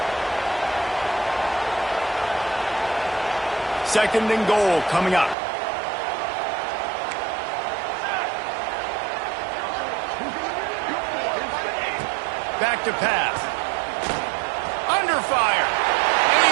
Second and goal coming up. Back to pass. Under fire. And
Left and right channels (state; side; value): drops out; left; at 5.4 s